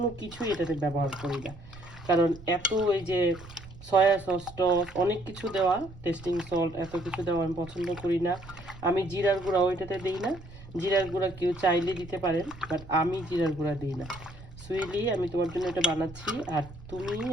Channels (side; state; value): right; noise; rumble, 18 dB below the sound